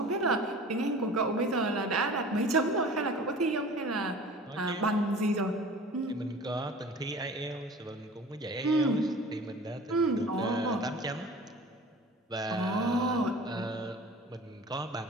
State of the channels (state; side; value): normal; both; correlation 0.42